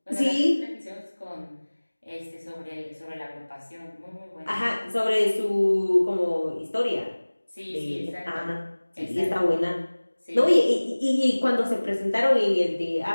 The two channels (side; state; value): both; inverted; correlation -1.00